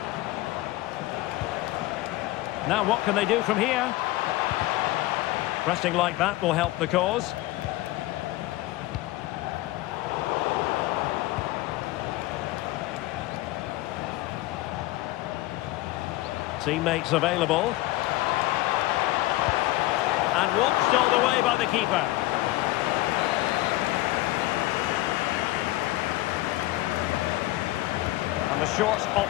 Now what can they do from here? Pressing like that will help the cause. Teammates available. And watched all the way by the keeper. And the short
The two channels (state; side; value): quieter; right; 17.9 dB